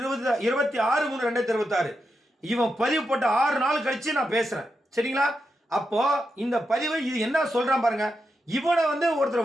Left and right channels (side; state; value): both; normal; correlation 0.86